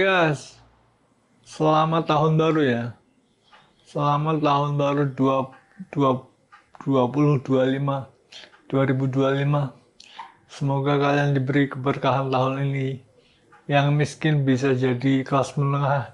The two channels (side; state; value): both; identical; correlation 1.00